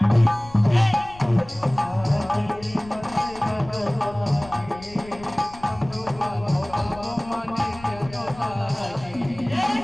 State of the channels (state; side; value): noise; left; rumble, 19 dB below the sound